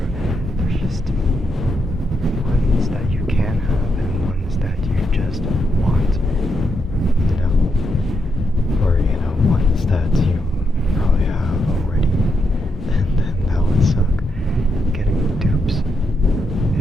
There's just ones that you can have and ones that you just want, you know? Or, you know, ones that you probably have already, and then that would suck. Getting dupes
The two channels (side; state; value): both; normal; correlation 0.81